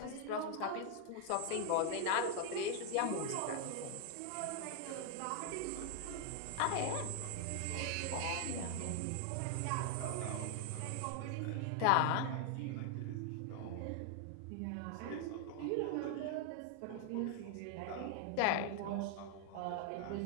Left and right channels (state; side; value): different; both; correlation 0.00